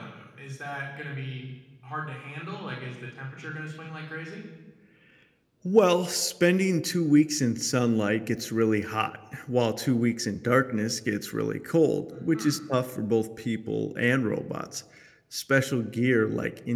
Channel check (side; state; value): both; identical; correlation 1.00